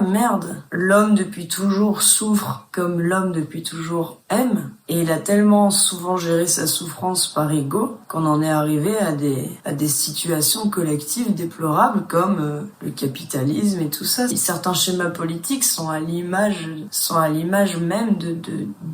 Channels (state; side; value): identical; both; correlation 1.00